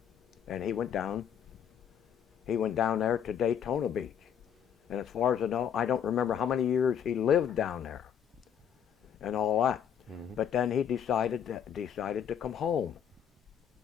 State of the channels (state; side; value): quieter; right; 8.5 dB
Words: And he went down there to Daytona Beach. And as far as I know, I don't remember how many years he lived down there and all that. But then he decided to come home.